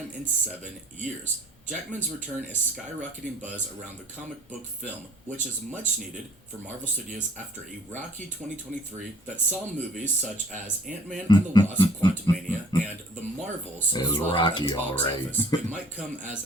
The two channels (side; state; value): both; normal; correlation 0.56